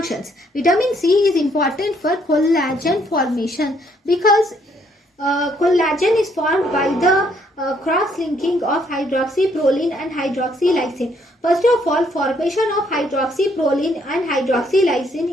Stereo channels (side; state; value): both; normal; correlation 0.69